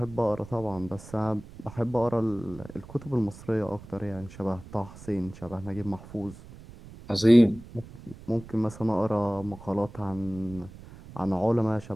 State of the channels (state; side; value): noise; right; rumble, 17 dB below the sound